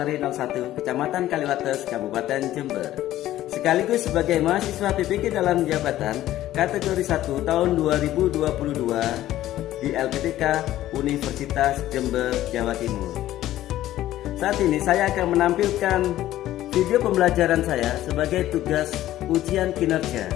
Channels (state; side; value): quieter; right; 14.0 dB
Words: 01, Kecamatan Kaliwates, Kabupaten Jember. Sekaligus sebagai mahasiswa PPG dalam jabatan kategori 1 tahun 2022 di LPTK Universitas Jember, Jawa Timur. Saat ini saya akan menampilkan video pembelajaran saya sebagai tugas ujian kinerja